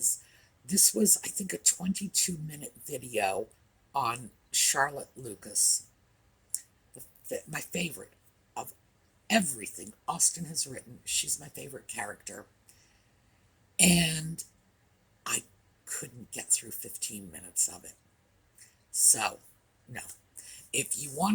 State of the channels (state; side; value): identical; both; correlation 1.00